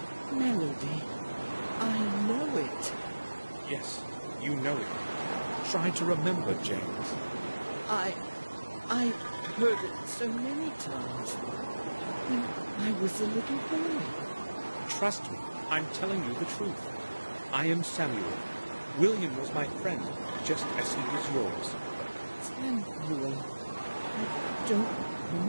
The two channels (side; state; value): both; inverted; correlation -1.00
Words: Melody. I know it. Yes, you know it. Try to remember, James. I heard it so many times. When I was a little boy. Trust me, I'm telling you the truth. I am Samuel. William was my friend, just as he was yours. Samuel. I don't